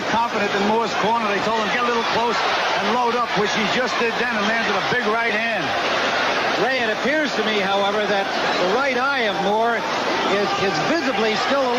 confident in Moore's corner. They told him get a little close and load up, which he just did then and landed a big right hand. Ray, it appears to me, however, that the right eye of Moore is visibly still a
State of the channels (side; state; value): both; identical; correlation 1.00